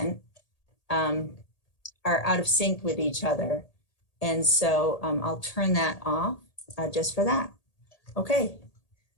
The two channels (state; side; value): late; right; 1.8 ms